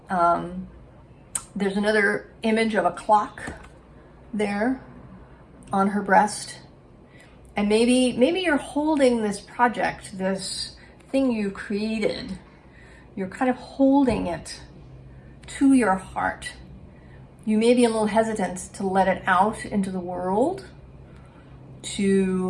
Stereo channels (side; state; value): both; identical; correlation 1.00